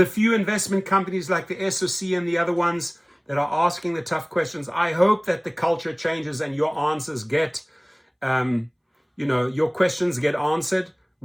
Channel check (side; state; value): both; identical; correlation 1.00